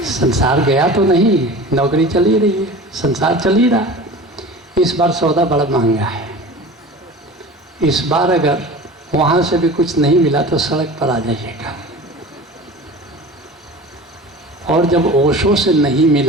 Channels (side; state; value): both; normal; correlation 0.37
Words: संसार गया तो नहीं, नौकरी चल ही रही है, संसार चल ही रहा है। इस बार सौदा बड़ा महंगा है। इस बार अगर वहाँ से भी कुछ नहीं मिला तो सड़क पर आ जाइएगा। और जब ओशो से नहीं